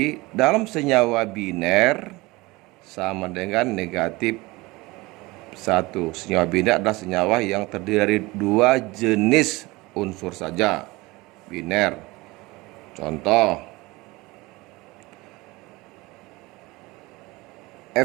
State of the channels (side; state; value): left; quieter; 22.1 dB